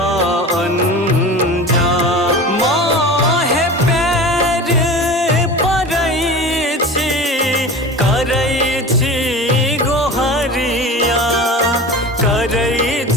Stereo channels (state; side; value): normal; both; correlation 0.34